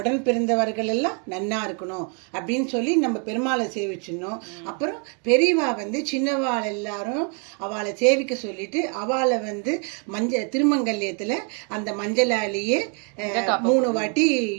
பிறந்தவர்கள் எல்லாம் நன்னா இருக்கணும் அப்படின்னு சொல்லி நம்ம பெருமாளை சேவிச்சிடணும். அப்புறம் பெரியவா வந்து சின்னவாள் எல்லாரும் அவளை சேவிக்க சொல்லிட்டு அவளை வந்து திருமங்கல்யத்தில் அந்த மஞ்சளாலேயே 3 வாட்டி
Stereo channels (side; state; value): left; quieter; 38.5 dB